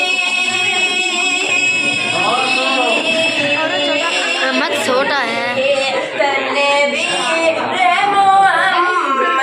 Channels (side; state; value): both; identical; correlation 1.00